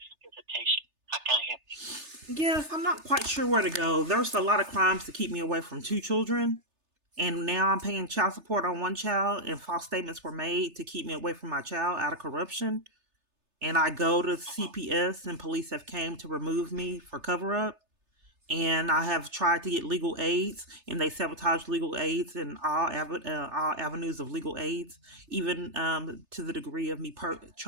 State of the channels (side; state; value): left; late; 3.3 ms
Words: and visitation. How can I help you? Yes, I'm not quite sure where to go. There's a lot of crimes to keep me away from 2 children. And now I'm paying child support on 1 child, and false statements were made to keep me away from my child out of corruption. And I go to CPS, and police have came to remove me for cover up. And I have tried to get legal aids, and they sabotage legal aids and all avenues of legal aids, even to the degree of me